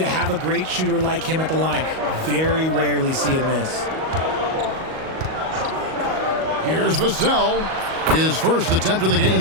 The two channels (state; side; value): late; left; 38 ms